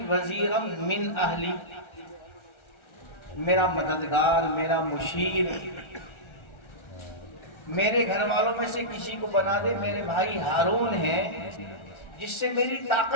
वज़ीरम मिन अहली, मेरा मददगार, मेरा मुशीर, मेरे घर वालों में से किसी को बना दे। मेरे भाई हारून है, जिससे मेरी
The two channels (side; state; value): right; late; 1.4 ms